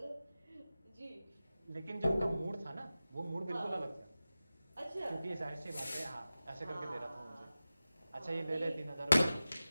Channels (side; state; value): both; inverted; correlation -0.95